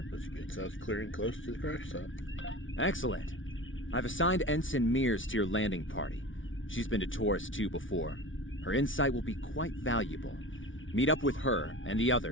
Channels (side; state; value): right; late; 0.57 ms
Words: that's good. Sounds clear and close to the crash site. Excellent. I've assigned Ensign Mears to your landing party. She's been to Taurus 2 before. Her insight will be quite valuable. Meet up with her and the